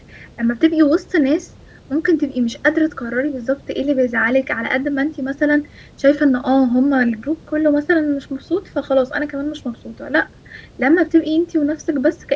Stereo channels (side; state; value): both; identical; correlation 1.00